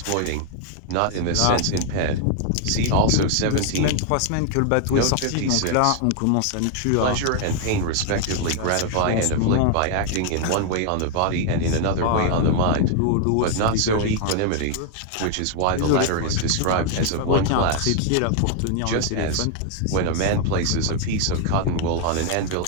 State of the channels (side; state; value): both; different; correlation 0.00